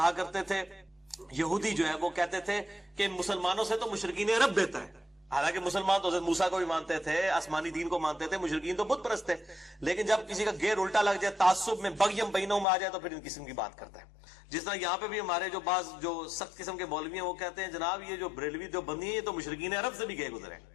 کرتے تھے، یہودی جو ہے وہ کہتے تھے کہ مسلمانوں سے تو مشرکین عرب بہتر ہے. حالانکہ مسلمان تو حضرت موسیٰ کو بھی مانتے تھے، آسمانی دین کو مانتے تھے، مشرکین تو بت پرست تھے. لیکن جب کسی کا گیر الٹا لگ جائے، تعصب میں بغیم بینوں میں آ جائے تو پھر ان قسم کی بات کرتا ہے. جس طرح یہاں پہ بھی ہمارے جو بعض جو سخت قسم کے مولوی ہیں وہ کہتے ہیں جناب یہ جو بریلوی جو بندی ہیں یہ تو مشرکین عرب سے بھی گئے گزرے.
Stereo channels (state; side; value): drops out; right; at 12.7 s